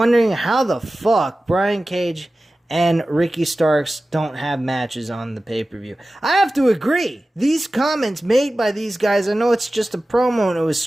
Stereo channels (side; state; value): both; normal; correlation 0.96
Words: how the fuck Brian Cage and Ricky Starks don't have matches on the pay-per-view. I have to agree. These comments made by these guys, I know it's just a promo and it was